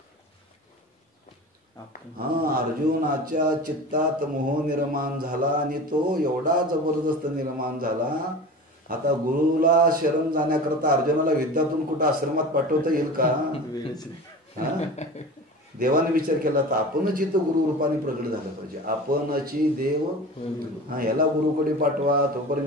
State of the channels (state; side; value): normal; both; correlation 0.34